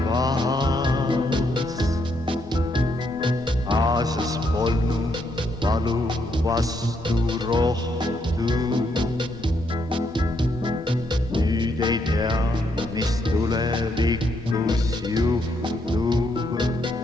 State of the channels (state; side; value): normal; both; correlation 0.76